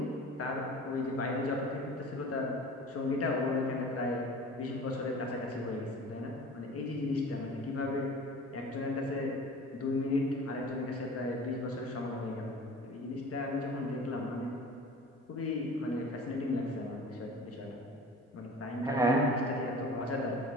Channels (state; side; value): normal; both; correlation 0.41